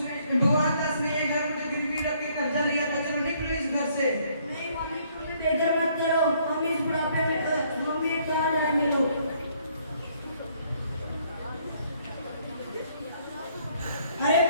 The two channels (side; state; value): both; inverted; correlation -0.65